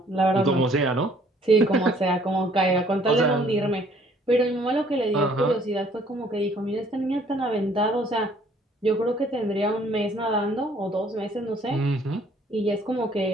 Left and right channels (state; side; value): normal; both; correlation 0.60